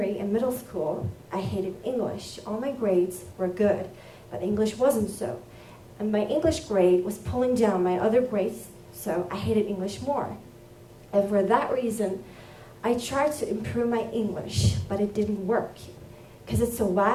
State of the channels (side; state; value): both; identical; correlation 1.00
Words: and middle school, I hated English. All my grades were good, but English wasn't so. And my English grade was pulling down my other grades, so I hated English more. And for that reason, I tried to improve my English, but it didn't work. Because it's a